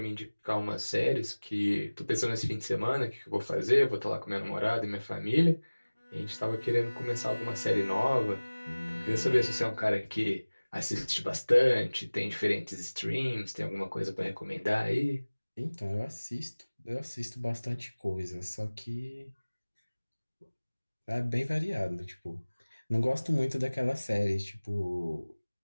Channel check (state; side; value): inverted; both; correlation -1.00